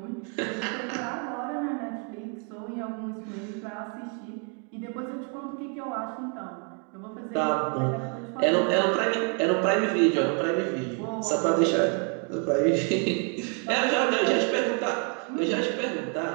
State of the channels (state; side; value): quieter; left; 39.8 dB